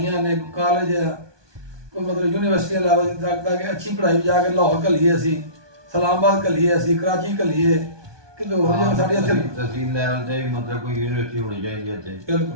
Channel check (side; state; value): left; late; 1.2 ms